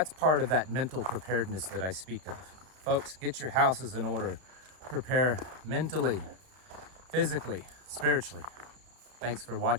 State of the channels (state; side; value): late; left; 32 ms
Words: part of that mental preparedness that I speak of. Folks, get your houses in order. Prepare mentally, physically, spiritually. Thanks for